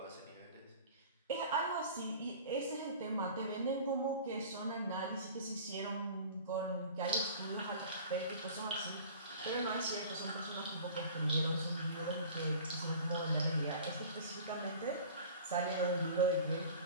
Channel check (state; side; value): inverted; both; correlation -0.42